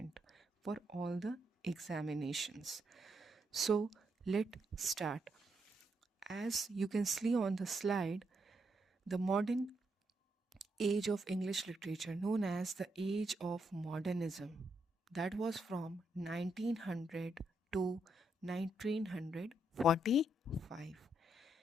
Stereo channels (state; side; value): normal; both; correlation 0.79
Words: for all the examinations. So let's start. As you can see on the slide, the modern age of English literature, known as the age of modernism, that was from 1900 to 1945.